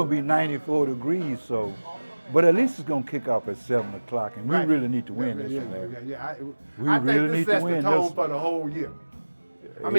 to be 94 degrees, so. But at least it's going to kick off at 7 o'clock, and we really need to win this one, Larry. I really think this need to sets win the tone this. for the whole year. I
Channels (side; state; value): both; inverted; correlation -1.00